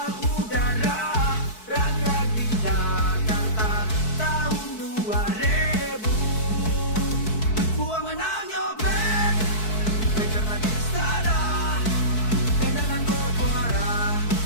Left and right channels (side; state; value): right; late; 4.6 ms